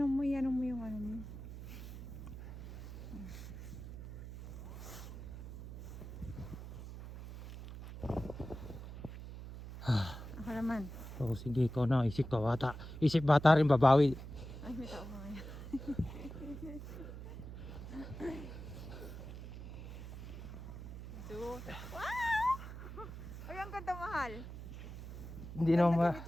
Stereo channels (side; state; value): right; noise; hum, 10 dB below the sound